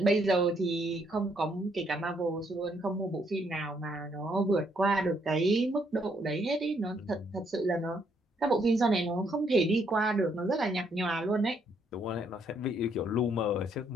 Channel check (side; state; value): both; normal; correlation 0.71